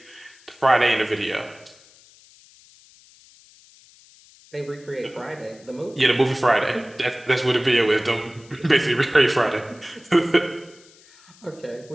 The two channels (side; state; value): left; noise; hiss, 26 dB below the sound